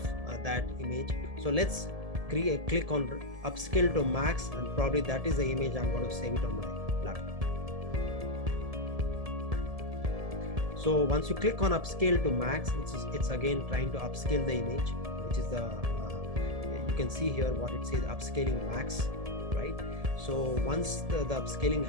that image. So let's click on upscale to max, and probably that is the image I'm going to save it on my laptop. So once you click on upscale to max, it's again trying to upscale the image, which is the you can see here what it says, upscaling max, right? So once the upscaling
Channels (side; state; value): left; late; 1.7 ms